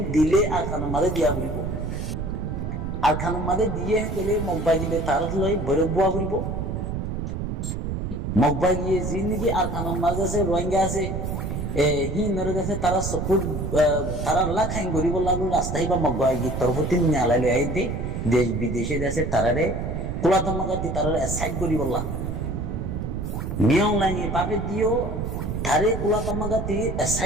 দিলে আর খানের মাঝে দিয়া ঘুরিব আর খানের মাঝে দিয়ে গেলে মগবা দিলে তার লই ভৈরব বুয়া ঘুরিব মগবা গিয়ে যি নাকি আর খানের মাঝে আছে রোহিঙ্গা আছে হিন্দুর কাছে তারা সপুর তারা লাখাইন গরিব লাগলো রাস্তায় বা মগবা গিয়ে তরফতি নালাই লই আই দে দেশ বিদেশে দেশে তারারে কুলাতমাগাতি তারারে সাইড গরিব লা মিয়াও লাইনে বাপে দিও তারে কুলাতমাগাতি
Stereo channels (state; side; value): noise; right; rumble, 4 dB below the sound